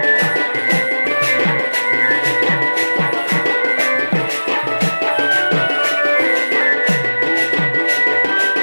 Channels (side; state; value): both; inverted; correlation -1.00